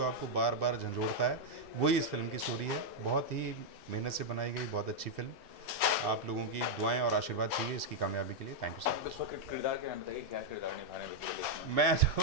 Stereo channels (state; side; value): normal; both; correlation -0.02